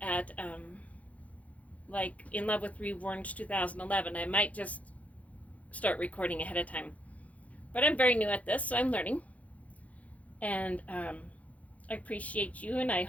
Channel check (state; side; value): late; right; 0.068 ms